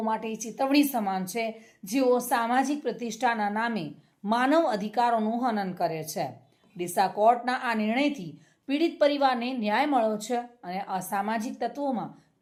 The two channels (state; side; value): identical; both; correlation 1.00